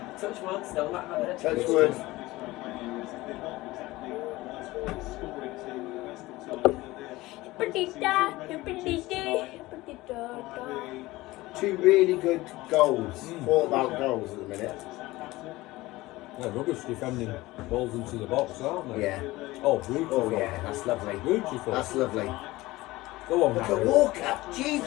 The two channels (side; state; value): right; quieter; 19.1 dB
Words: Touch wood, still not had it. Touch wood. Two really good goals. Thought about goals at the minute. Yeah, rubbish defending balls into the box, aren't they? Yeah. Oh, beautiful. Oh, yeah, that's lovely. Beautiful. That's lovely. Go on, Look Harry. at Walker. Jeez,